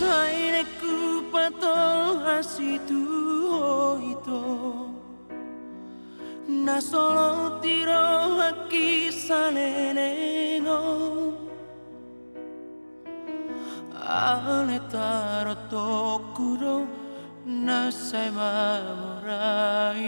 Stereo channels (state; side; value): inverted; both; correlation -1.00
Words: pato asitu ito na solo tiro haki salenengo ale taro tokuro na sai mamoraya